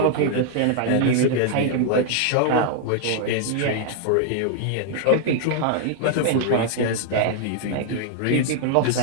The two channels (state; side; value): different; both; correlation 0.00